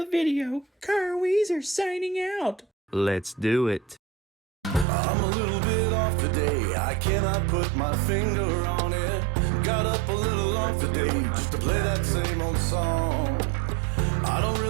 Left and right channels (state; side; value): drops out; left; at 4.9 s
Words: video. Kyle Weezer signing out. Let's do it. I'm a little bit off today, I cannot put my finger on it. Got up a little off today, just to play that same old song. I don't